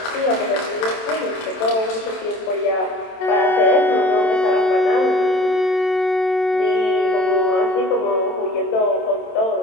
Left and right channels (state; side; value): late; right; 27 ms